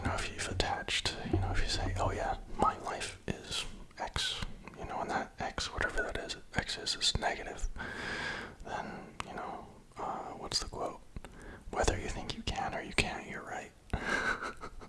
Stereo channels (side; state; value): both; identical; correlation 1.00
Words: know, if you've attached, you know, if you say, oh yeah, my life is X, you know, and that X, whatever that is, X is negative, then, you know, what's the quote? Whether you think you can or you can't, you're right.